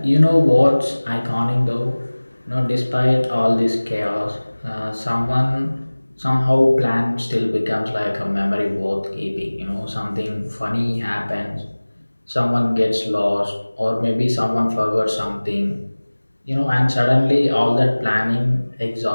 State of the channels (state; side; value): inverted; both; correlation -1.00